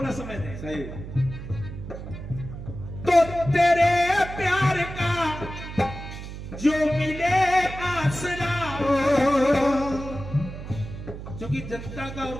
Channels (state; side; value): noise; right; hum, 10 dB below the sound